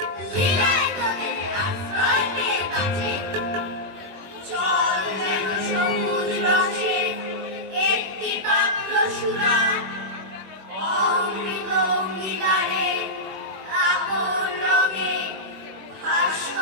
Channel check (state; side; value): late; left; 21 ms